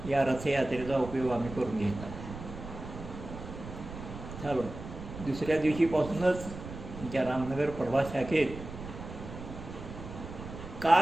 या रथयात्रेचा उपयोग आम्ही करून घेतला. चालू दुसऱ्या दिवशीपासूनच आमच्या रामनगर प्रभास शाखेत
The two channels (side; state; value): right; noise; rumble, 11 dB below the sound